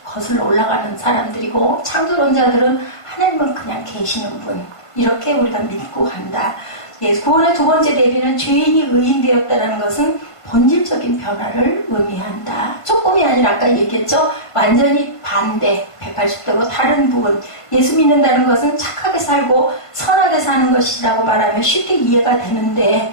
거슬러 올라가는 사람들이고 창조론자들은 하나님은 그냥 계시는 분 이렇게 우리가 믿고 간다. 예, 구원의 두 번째 대비는 죄인이 의인 되었다는 것은 본질적인 변화를 의미한다. 조금이 아니라 아까 얘기했죠. 완전히 반대 180도로 다른 부분. 예수 믿는다는 것은 착하게 살고 선하게 사는 것이라고 말하면 쉽게 이해가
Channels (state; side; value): late; right; 1.5 ms